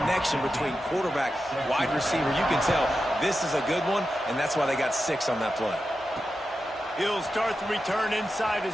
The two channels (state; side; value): normal; both; correlation 0.90